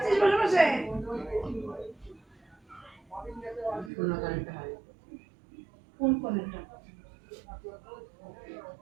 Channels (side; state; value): left; drops out; at 3.9 s